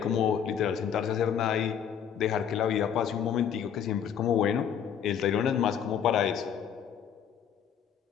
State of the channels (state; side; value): quieter; right; 8.4 dB